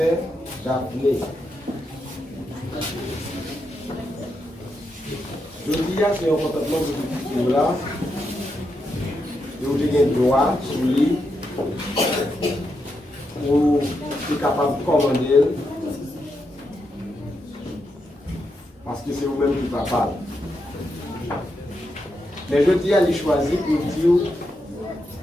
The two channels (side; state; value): both; normal; correlation 0.83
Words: Daphné. Je dis que c'est un contentement de tout là. Vous avez un droit sur lui pour être capable de commander que c'est vous-même qui va parler. Mais je dis à lui choisir pour dire